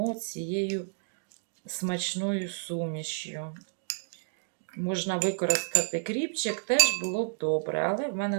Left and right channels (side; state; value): left; silent; digital silence